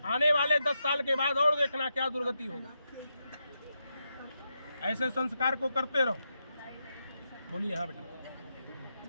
आने वाले 10 साल के बाद और देखना क्या दुर्गति होगा। ऐसे संस्कार को करते रहो। बोलिए। हाँ बेटा।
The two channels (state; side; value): inverted; both; correlation -0.85